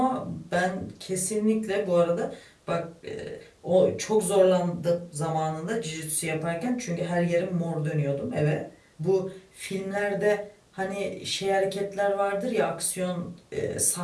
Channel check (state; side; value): identical; both; correlation 1.00